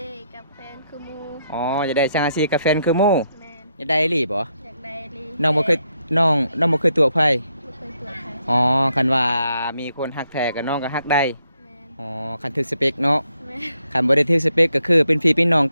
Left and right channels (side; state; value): both; inverted; correlation -0.78